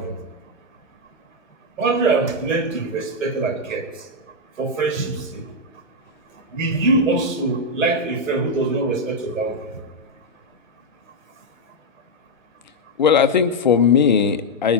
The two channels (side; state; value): both; normal; correlation -0.01